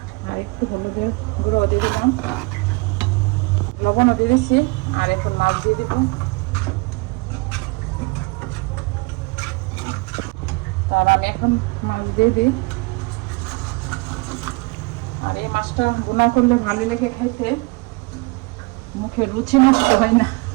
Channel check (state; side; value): quieter; left; 26.2 dB